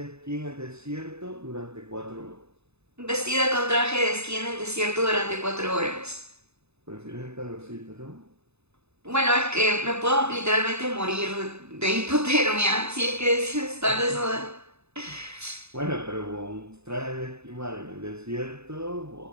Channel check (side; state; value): left; late; 0.80 ms